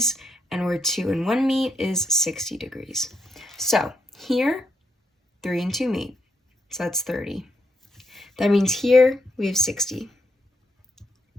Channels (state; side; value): normal; both; correlation 0.78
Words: and where 2 and 1 meet is 60 degrees. So here, 3 and 2 meet, so that's 30. That means here we have 60.